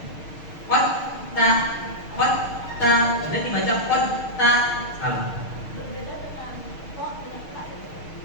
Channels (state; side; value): late; right; 6.5 ms